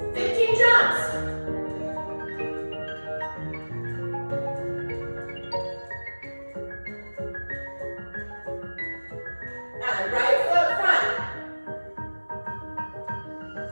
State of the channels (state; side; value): inverted; both; correlation -1.00